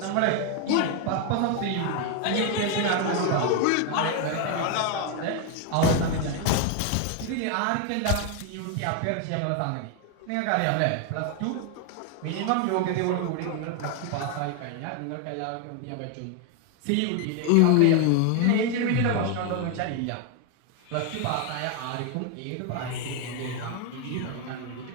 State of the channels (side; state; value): both; different; correlation 0.01